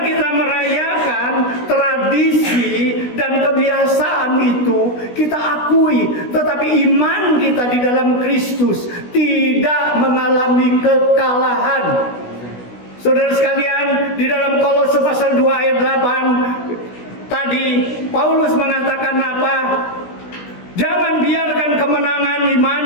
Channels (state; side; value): late; right; 16 ms